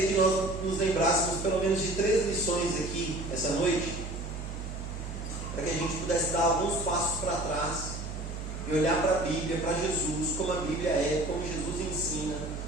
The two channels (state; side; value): noise; right; hum, 7 dB below the sound